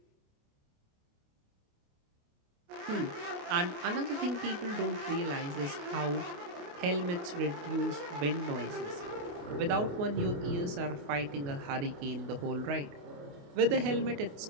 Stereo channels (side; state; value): left; late; 28 ms